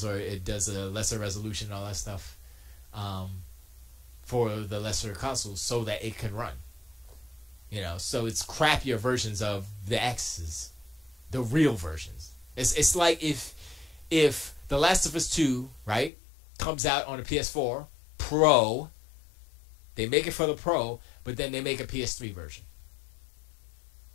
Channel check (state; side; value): drops out; right; at 16.1 s